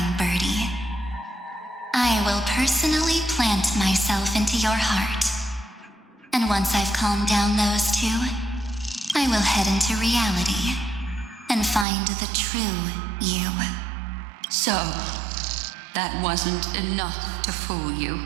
birdie. I will personally plant myself into your heart. And once I've calmed down those two, I will head into reality and find the true you. So, that wasn't enough to fool you.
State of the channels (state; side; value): drops out; left; at 11.9 s